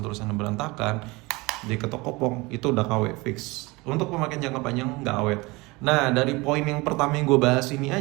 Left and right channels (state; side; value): quieter; left; 23.7 dB